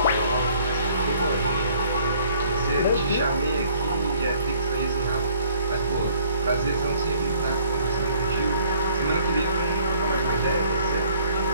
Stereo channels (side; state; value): both; inverted; correlation -0.59